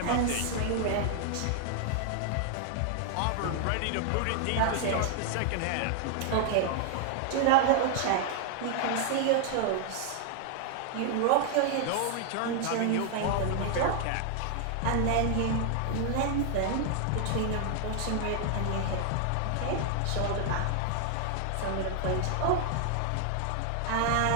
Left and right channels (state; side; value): different; both; correlation 0.00